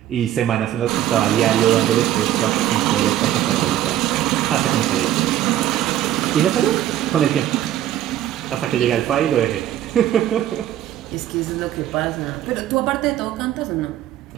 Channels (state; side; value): quieter; left; 12.4 dB